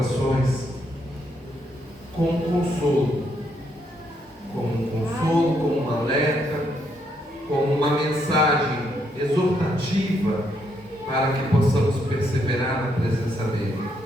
com um consolo, como um alerta, como uma mensagem exortativa para que possamos perseverar na presença dele.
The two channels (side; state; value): both; normal; correlation 0.75